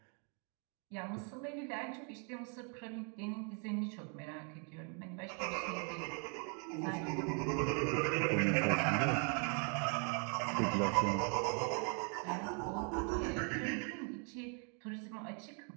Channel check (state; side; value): quieter; left; 39.3 dB